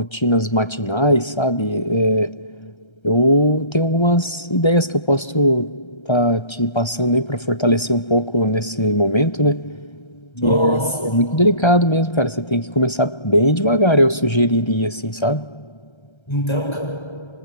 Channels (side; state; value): right; late; 1.3 ms